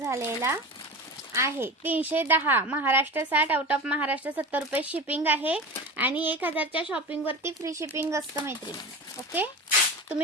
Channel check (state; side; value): normal; both; correlation 0.30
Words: आहे। 310 महाराष्ट्र 60, आउट ऑफ महाराष्ट्र 70 रुपये शिपिंग आहे आणि 1000च्या शॉपिंग वरती फ्री शिपिंग असतं मैत्रिणी। ओके,